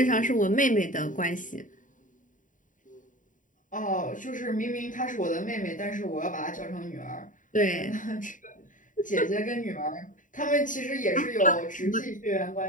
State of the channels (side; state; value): right; late; 0.38 ms